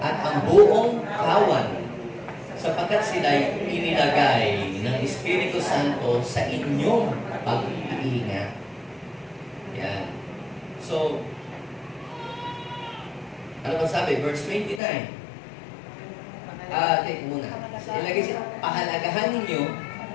at ang buong kawan sapagkat sila'y inilagay ng Espiritu Santo sa inyong pag-iingat. Yan. So, ano ba sabi? Verse 29. Take muna. Ilagay siya, pahalagahan ninyo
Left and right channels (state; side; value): drops out; right; at 14.8 s